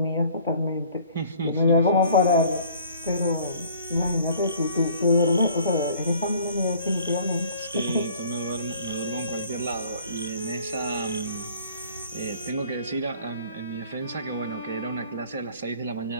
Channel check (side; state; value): both; inverted; correlation -0.53